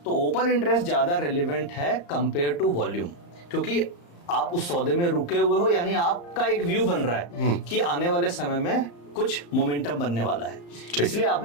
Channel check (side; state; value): right; late; 35 ms